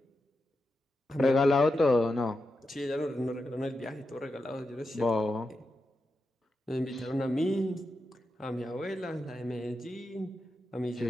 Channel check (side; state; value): both; normal; correlation 0.88